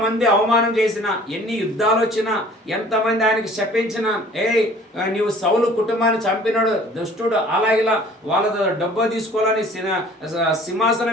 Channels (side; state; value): both; normal; correlation 0.51